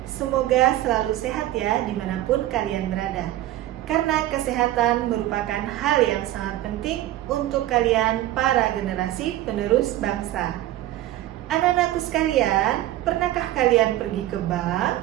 Semoga selalu sehat ya dimanapun kalian berada. Karena kesehatan merupakan hal yang sangat penting untuk kalian para generasi penerus bangsa. Anak-anakku sekalian, pernahkah kalian pergi ke bank?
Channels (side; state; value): left; quieter; 14.6 dB